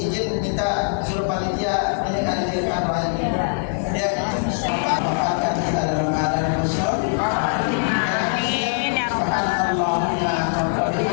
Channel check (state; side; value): silent; right; digital silence